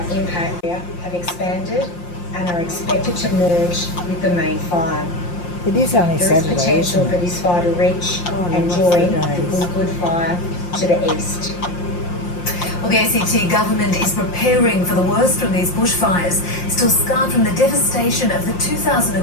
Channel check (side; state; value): right; late; 5.7 ms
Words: impact area have expanded and are expected to merge with the main fire. It is only There Saturday, is potential isn't for it? this fire to reach and lost join the the days. Good fire to the east. Well, the ACT government is preparing for the worst from these bushfires, still scarred from the devastation of the